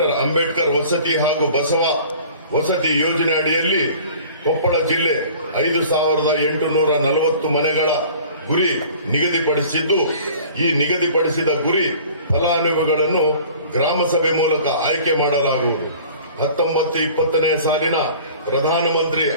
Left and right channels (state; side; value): inverted; both; correlation -0.46